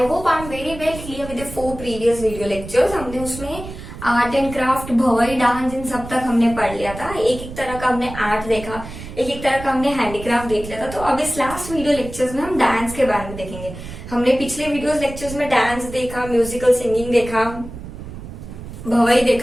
hope I'm very well clear with the 4 previous video lectures. हमने उसमें art and craft, Bhavai, dance, इन सब तक हमने पढ़ लिया था. एक एक तरह का हमने आर्ट देखा, एक एक तरह का हमने हैंडीक्राफ्ट देख लिया था. तो अब इस लास्ट वीडियो लेक्चर्स में हम डांस के बारे में देखेंगे. हमने पिछले वीडियोस लेक्चर्स में डांस देखा, म्यूजिकल सिंगिंग देखा, भवई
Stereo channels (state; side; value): noise; right; rumble, 12 dB below the sound